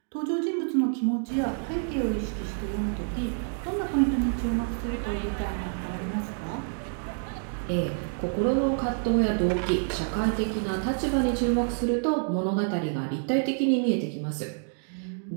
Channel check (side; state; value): left; silent; 59 dB below the other